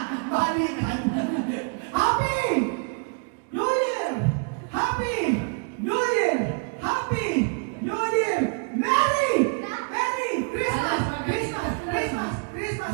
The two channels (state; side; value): quieter; left; 35.4 dB